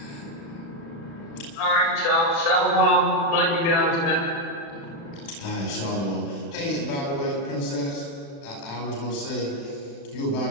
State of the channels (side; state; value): right; late; 36 ms